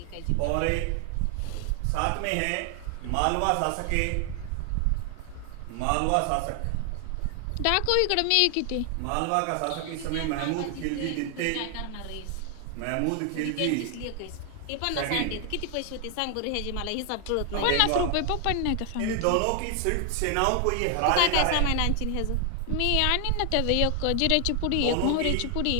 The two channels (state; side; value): different; both; correlation 0.00